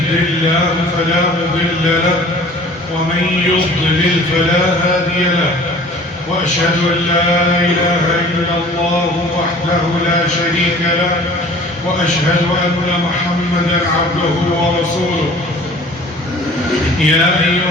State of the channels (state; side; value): normal; both; correlation 0.48